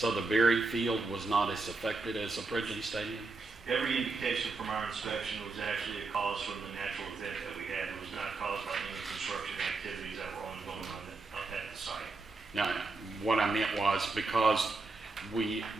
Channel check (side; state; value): left; quieter; 3.7 dB